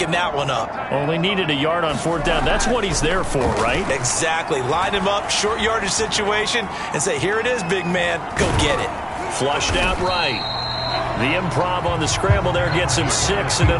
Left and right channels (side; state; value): both; identical; correlation 1.00